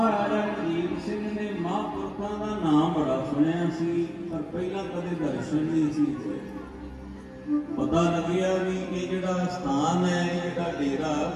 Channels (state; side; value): identical; both; correlation 1.00